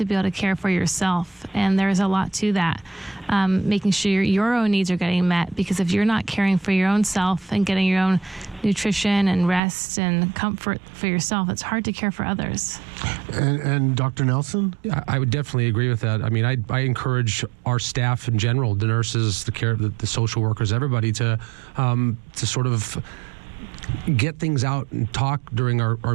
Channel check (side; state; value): left; drops out; at 9.6 s